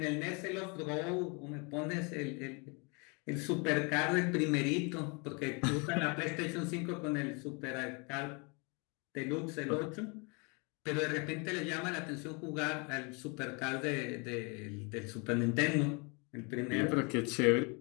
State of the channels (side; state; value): right; quieter; 31.9 dB